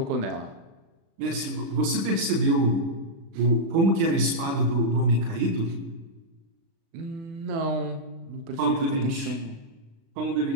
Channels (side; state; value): left; late; 36 ms